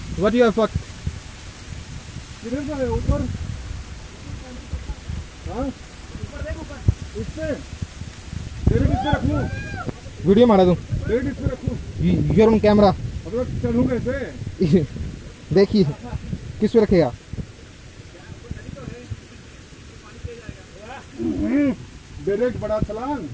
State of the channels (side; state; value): both; identical; correlation 1.00